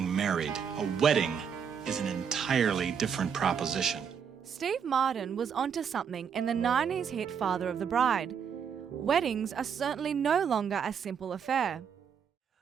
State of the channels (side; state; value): left; quieter; 7.3 dB